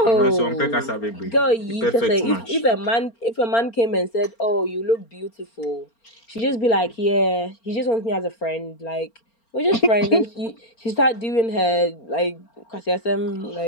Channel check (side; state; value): right; late; 4.4 ms